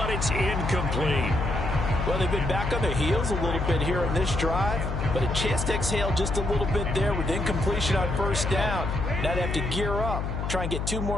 it's incomplete. Well, they've been back on their heels a little bit here on this drive, but a chance to exhale just a little bit there with incompletion on 1st down. Now they have to gear up, try and get 2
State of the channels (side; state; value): left; noise; hum, 3 dB below the sound